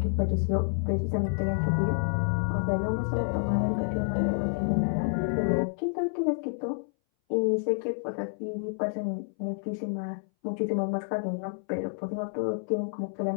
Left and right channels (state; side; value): silent; right; 59 dB below the other